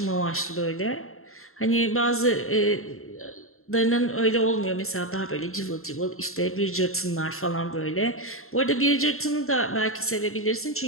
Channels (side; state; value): right; late; 0.62 ms